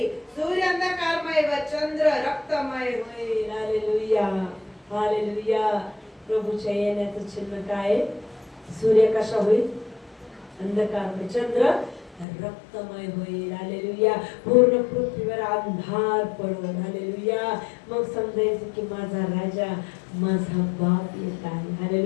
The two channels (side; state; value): right; drops out; at 12.2 s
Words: सूर्य अंधकारमय व चंद्र रक्तमय होईल. Hallelujah, hallelujah. प्रभूच्या येण्याचं चिन्ह काय? सूर्य कसा होईल? अंधकारमय, चंद्र रक्तमय होईल. हालेलुया. पूर्ण पृथ्वीवर अंधार पडेल. हालेलुया. मग समजायचं की माझा राजा, माझा बाप येत आहे.